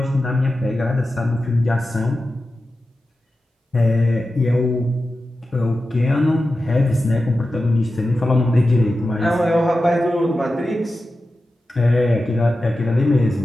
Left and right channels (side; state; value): both; normal; correlation 0.92